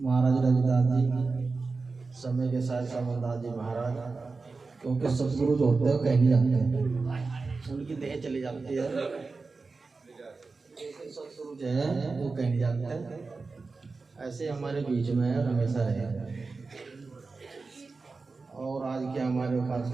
रविदास जी, समय के साथ समरदास जी महाराज, क्योंकि सतगुरु जो होते हैं कहीं नहीं जाते हैं, उनकी देह चली जाती है। सतगुरु जो है वो कहीं नहीं जाते हैं, ऐसे हमारे बीच में हमेशा रहे। और आज के हमारे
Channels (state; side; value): quieter; left; 4.1 dB